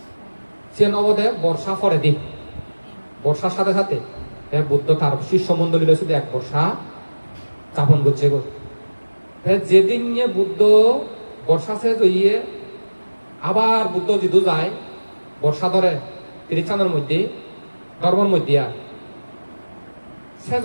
সে নবদে বর্ষা ফরে দি বর্ষার সাথে সাথে বুদ্ধ তার শিষ্য মন্ডলী শুধু এক বর্ষা যাপন করছে যেদিন বুদ্ধ বর্ষা শেষ হইয়ে আবার বুদ্ধ জিদু যায় বর্ষা ধরে তিরিচানের মধ্যে ধর্মের মধ্যে আর সে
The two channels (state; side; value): inverted; both; correlation -1.00